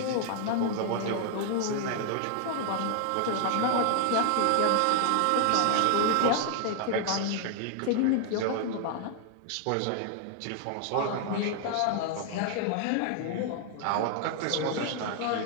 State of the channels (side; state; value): both; different; correlation 0.00